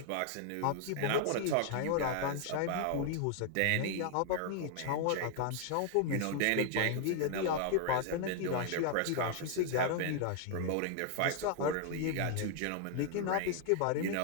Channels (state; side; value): different; both; correlation 0.00